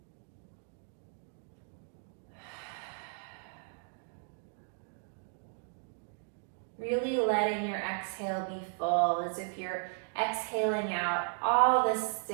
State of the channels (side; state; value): left; silent; 54 dB below the other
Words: Really letting your exhale be full, as if you're exhaling out all the